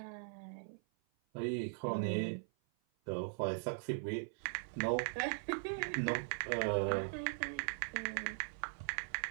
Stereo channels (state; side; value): silent; left; 51 dB below the other